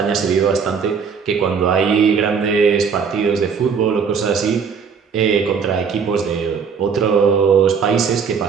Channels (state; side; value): quieter; left; 6.3 dB